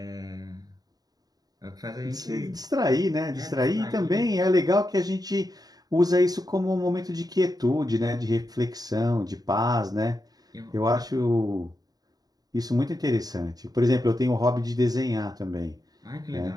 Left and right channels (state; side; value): late; left; 0.18 ms